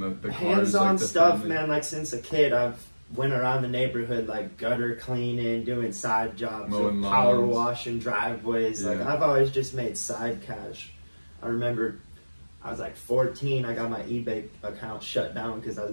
cars? Hands-on like stuff, family? man. Like since a kid, I've went around the neighborhood like gutter cleaning, doing side jobs, mowing power lawns, washing driveways. Like I've always just made side cash. I remember I was like 14. I got my eBay account shut down because I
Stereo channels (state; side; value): inverted; both; correlation -1.00